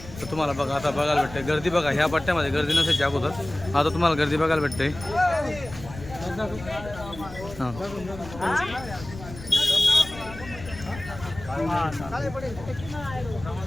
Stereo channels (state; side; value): noise; left; rumble, 14 dB below the sound